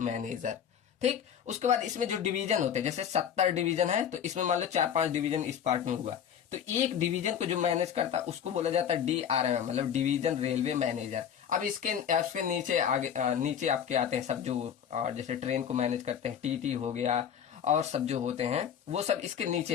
ठीक, उसके बाद इसमें जो डिवीजन होते हैं, जैसे 70 डिवीजन है तो इसमें मान लो 4-5 डिवीजन इस पार्ट में हुआ, तो एक डिवीजन को जो मैनेज करता है उसको बोला जाता है DRM, मतलब डिवीजन रेलवे मैनेजर। अब इसके नीचे आगे नीचे आपके आते हैं सब जो जैसे ट्रेन को मैनेज करते हैं, TT हो गया, और सब जो होते हैं वो सब इसके नीचे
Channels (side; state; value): right; quieter; 8.6 dB